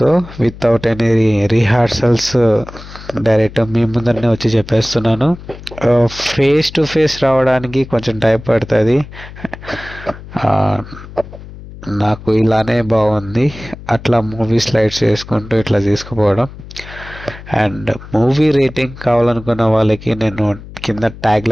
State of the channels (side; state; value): left; noise; hum, 16 dB below the sound